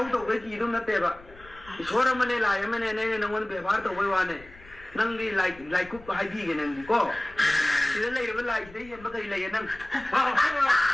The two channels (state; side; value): noise; left; rumble, 21 dB below the sound